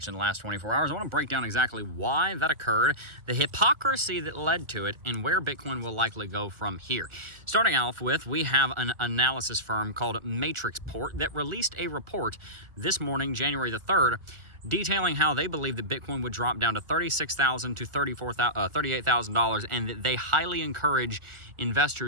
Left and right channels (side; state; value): left; late; 1.4 ms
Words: in the last 24 hours. I want to break down exactly why that occurred, the hypocrisy that led to it, and where Bitcoin will likely go from here. Starting off with, we have an analysis firm called Matrixport that released a report this morning, January the 3rd, detailing how they believe that Bitcoin would drop down to $36,000 to $38,000, and that they highly encourage